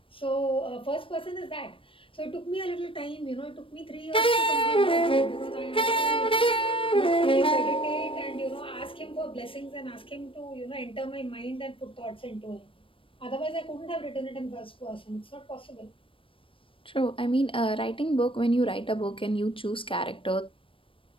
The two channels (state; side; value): late; right; 0.25 ms